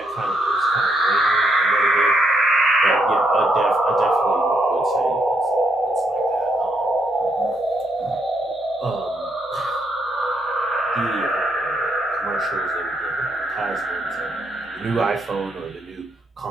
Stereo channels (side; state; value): both; normal; correlation 0.76